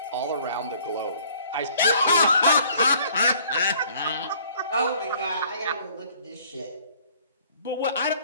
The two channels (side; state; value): both; inverted; correlation -0.57